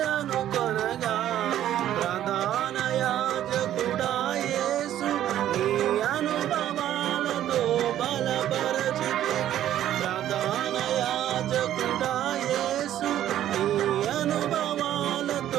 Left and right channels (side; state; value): left; quieter; 11.9 dB